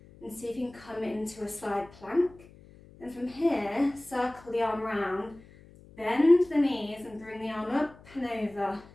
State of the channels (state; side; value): noise; left; hum, 23 dB below the sound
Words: and see if you can come into a side plank. And from here, circle the arm round, bend the knees and bring the arm up and over,